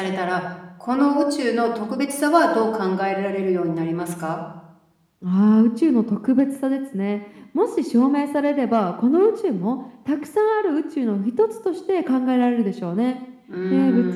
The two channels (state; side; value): identical; both; correlation 1.00